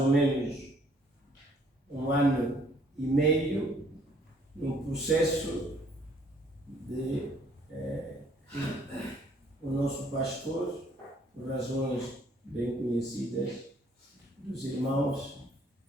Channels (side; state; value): both; normal; correlation 0.62